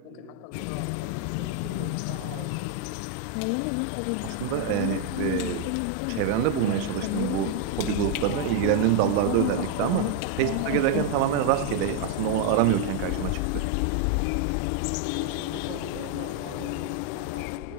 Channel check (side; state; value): both; different; correlation 0.01